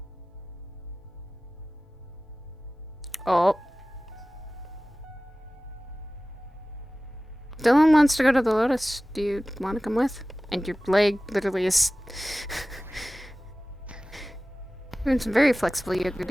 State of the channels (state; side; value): normal; both; correlation 0.97